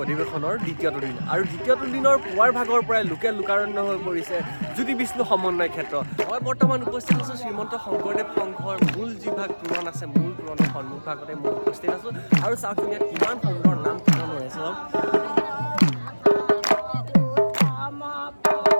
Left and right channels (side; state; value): both; inverted; correlation -1.00